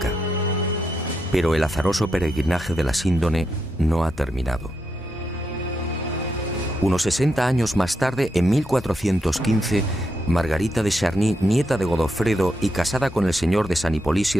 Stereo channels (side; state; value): both; normal; correlation 0.83